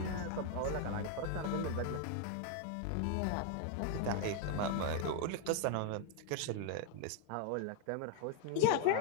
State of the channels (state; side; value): different; both; correlation 0.00